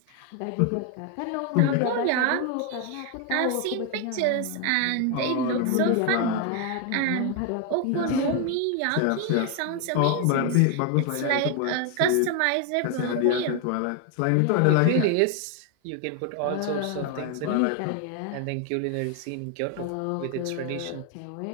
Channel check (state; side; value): different; both; correlation 0.01